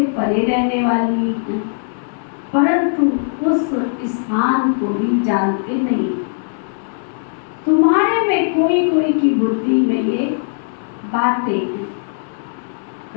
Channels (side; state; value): right; silent; 67 dB below the other